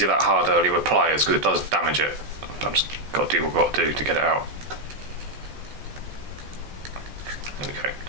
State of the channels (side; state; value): left; late; 14 ms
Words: it that hard earlier with pliers because it does damage it. I've just got to do what I've got to do to get it out. There we go.